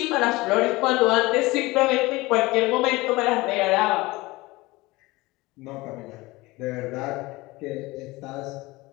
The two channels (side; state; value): right; quieter; 21.2 dB